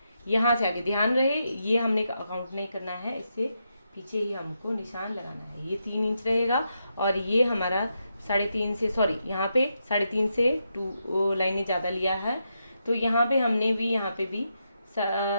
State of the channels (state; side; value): inverted; both; correlation -0.84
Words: यहाँ से आगे ध्यान रहे ये हमने काउंट नहीं करना है, इससे पीछे ही हमको निशान लगाना है। ये 3 इंच रहेगा, और ये हमारा 3.5 से, सॉरी यहाँ पे 3.5 से 2 लाइनें ज़्यादा लिया है। तो यहाँ पे हमने भी यहाँ पे भी